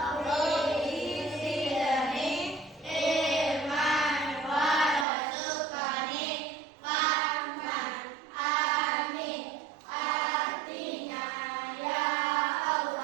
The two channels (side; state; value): left; drops out; at 5.1 s